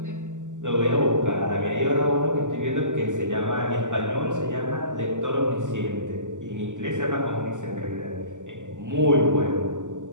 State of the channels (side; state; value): left; late; 0.86 ms